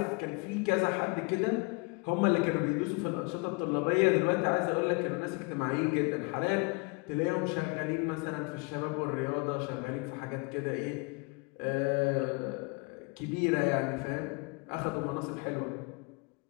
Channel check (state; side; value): quieter; right; 30.2 dB